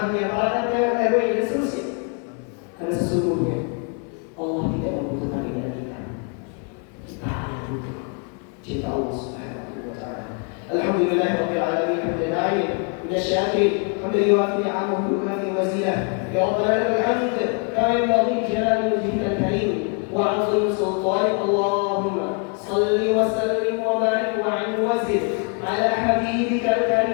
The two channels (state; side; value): quieter; right; 38.2 dB